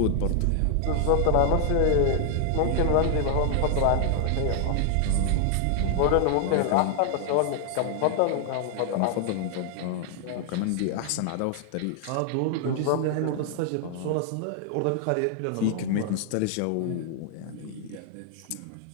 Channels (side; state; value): both; different; correlation 0.00